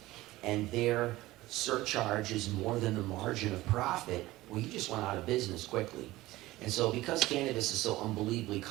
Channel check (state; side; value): quieter; left; 17.8 dB